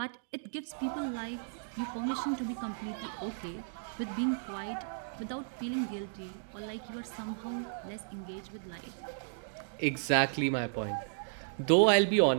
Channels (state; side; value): silent; left; digital silence